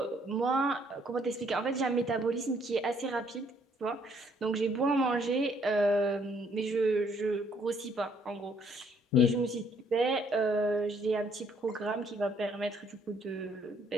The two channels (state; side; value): normal; both; correlation 0.66